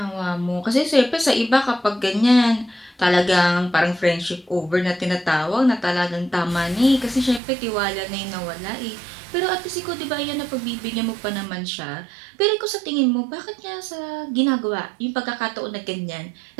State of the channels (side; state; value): left; drops out; at 7.4 s